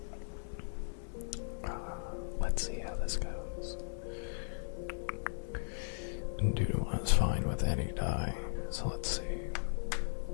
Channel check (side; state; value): right; silent; 53 dB below the other